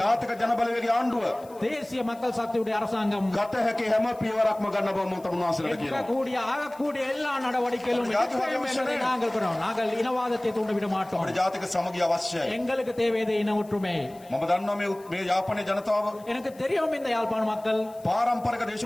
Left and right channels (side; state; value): left; noise; hiss, 26 dB below the sound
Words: ජාතික ජනබලවේගයේ ආණ්ඩුව தேசிய மக்கள் சக்தியுடைய அரசாங்கம் ගත හැකි හැම පියවරක්ම ගන්න බව මම තමුන්වහන්සේලාට කියනවා. எடுக்கக்கூடிய ஆகக்கூடிய எல்லா நடவடிக்கைகளும் எடுப்போம் என்பதை நாங்கள் கூறுகிறோம். நாங்கள் இனவாதத்தை தூண்டிவிட மாட்டோம். අපේ ජාතික සමගිය අවශ්‍යයි. எங்களுக்கு தேவையது இன ஒற்றுமை. මම දන්නවා මේ යාපනයේ ජනතාව எனக்கு தெரியும் இந்த யாழ்ப்பாண மக்கள் පාරම්පරික